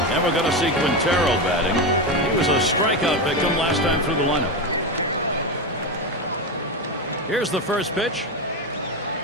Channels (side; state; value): both; normal; correlation 0.15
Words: we're going to see Quintero batting. He was a strikeout victim last time through the lineup. Here's the first pitch.